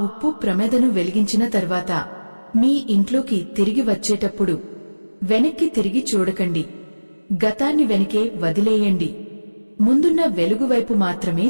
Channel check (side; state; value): both; inverted; correlation -1.00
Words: ఉప్పు ప్రమిదను వెలిగించిన తర్వాత మీ ఇంట్లోకి తిరిగి వచ్చేటప్పుడు వెనక్కి తిరిగి చూడకండి. గతాన్ని వెనకే వదిలేయండి. ముందున్న వెలుగువైపు మాత్రమే